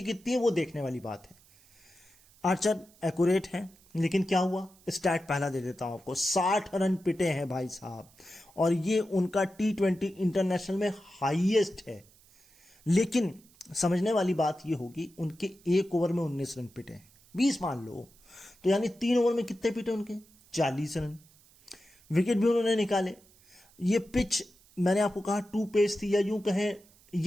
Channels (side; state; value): right; noise; hiss, 28 dB below the sound